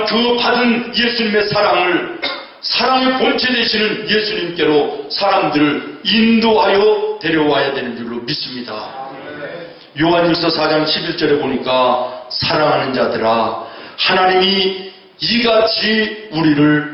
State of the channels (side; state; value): both; identical; correlation 1.00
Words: 그 받은 예수님의 사랑을, 사랑의 본체 되시는 예수님께로 사람들을 인도하여 데려와야 되는 줄로 믿습니다. 요한일서 4장 11절에 보니까 사랑하는 자들아, 하나님이 이같이